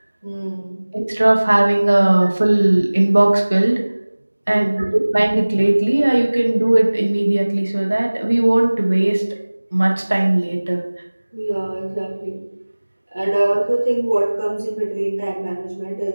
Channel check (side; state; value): both; inverted; correlation -1.00